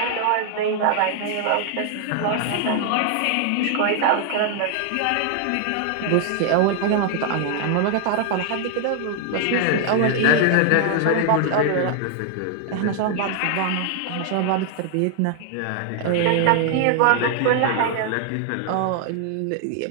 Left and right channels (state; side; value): different; both; correlation 0.00